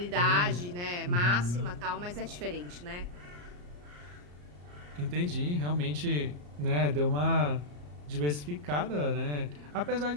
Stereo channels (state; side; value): late; left; 34 ms